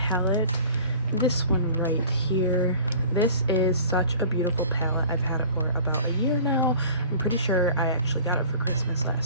This one right here. This is such a beautiful palette. I've had it for about a year now. I'm pretty sure I actually got it for Christmas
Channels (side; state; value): both; inverted; correlation -0.45